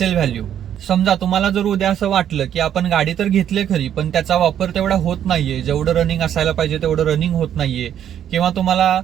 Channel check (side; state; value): left; quieter; 10.0 dB